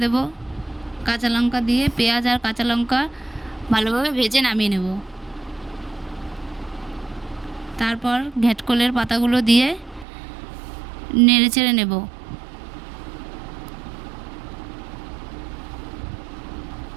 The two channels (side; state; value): left; drops out; at 10.1 s